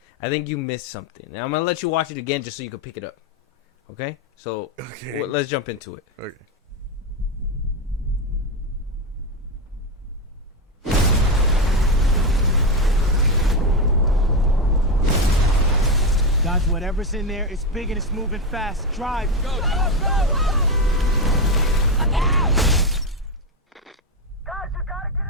I think you missed something. Now, I'm going to let you watch it again just so you can pick it up. Okay? So, let's jump into it. Okay. Dodge whatever's in there. It's big and it's moving fast. Drive. Go, go, go, go. Look out! Guys, you gotta get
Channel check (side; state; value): both; normal; correlation 0.11